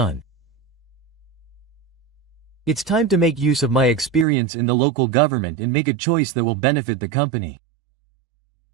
It's time to make use of my experience in the local government and make a choice that will benefit the company.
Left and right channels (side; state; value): left; drops out; at 4.2 s